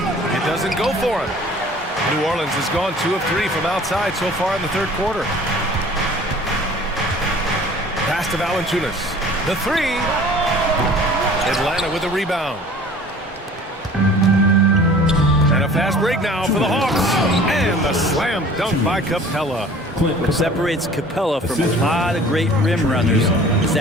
doesn't go for him. New Orleans has gone 2 of 3 from outside so far in the third quarter. Pass to Valanciunas. The three. Atlanta with the rebound. And a fast break now for the Hawks. And the slam dunk by Capella. What separates Capella from a lot of great rim runners is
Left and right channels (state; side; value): normal; both; correlation 0.47